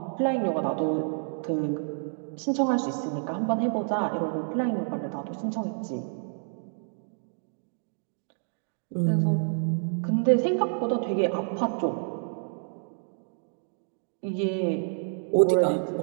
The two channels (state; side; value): silent; left; digital silence